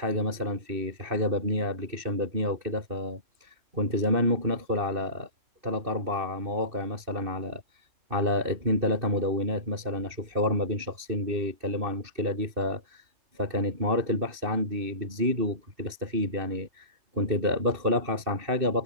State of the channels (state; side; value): late; left; 2.6 ms